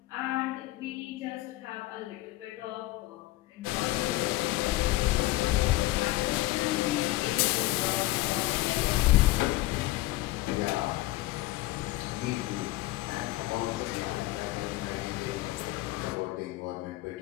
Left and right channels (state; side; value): quieter; right; 18.2 dB